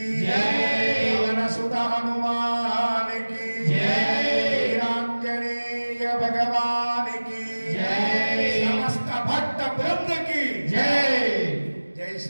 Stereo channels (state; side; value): inverted; both; correlation -1.00